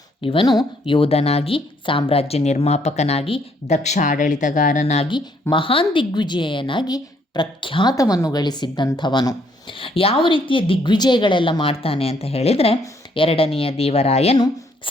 ಇವನು ಯೋಧನಾಗಿ, ಸಾಮ್ರಾಜ್ಯ ನಿರ್ಮಾಪಕನಾಗಿ, ದಕ್ಷ ಆಡಳಿತಗಾರನಾಗಿ, ಮಹಾನ್ ದಿಗ್ವಿಜಯನಾಗಿ ಪ್ರಖ್ಯಾತವನ್ನು ಗಳಿಸಿದ್ದಂಥವನು. ಯಾವ ರೀತಿಯ ದಿಗ್ವಿಜಯಗಳೆಲ್ಲ ಮಾಡ್ತಾನೆ ಅಂತ ಹೇಳಿದರೆ, 2ನೆಯ ದೇವರಾಯನು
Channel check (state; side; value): normal; both; correlation 0.68